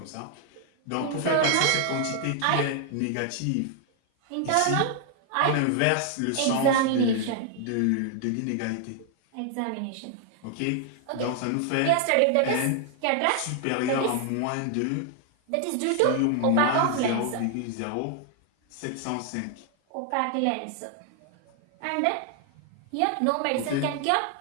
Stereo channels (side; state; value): both; different; correlation 0.00